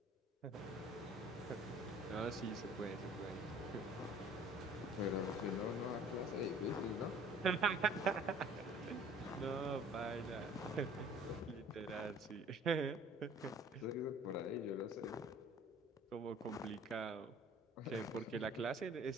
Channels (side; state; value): both; normal; correlation 0.51